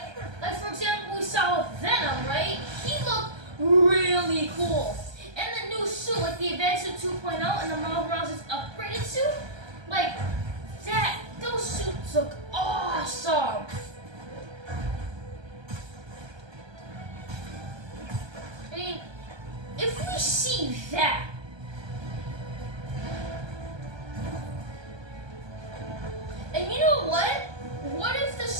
for example, we saw with Venom, right? He looked really cool. And the new suit, like the Advanced Suit 2.0 and the Miles Morales' upgraded suit, like those suits look awesome. I mean, if we see that, and you know what? What if the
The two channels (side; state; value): left; late; 1.2 ms